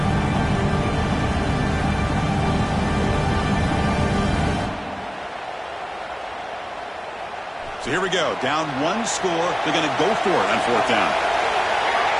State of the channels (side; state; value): both; identical; correlation 1.00